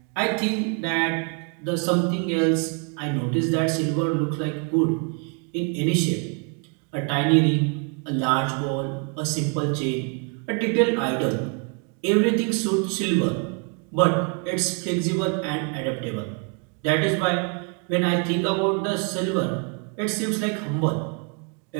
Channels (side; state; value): left; quieter; 37.3 dB